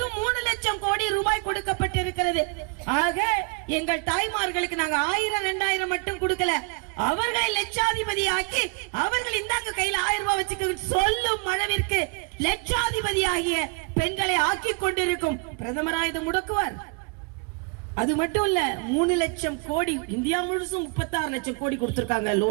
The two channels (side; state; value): left; quieter; 32.3 dB